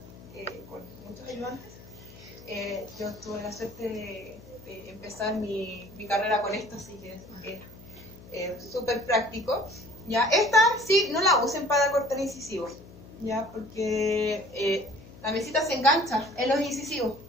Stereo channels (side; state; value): left; noise; hum, 19 dB below the sound